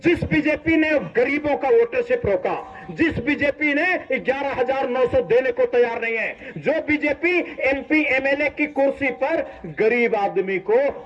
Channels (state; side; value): identical; both; correlation 1.00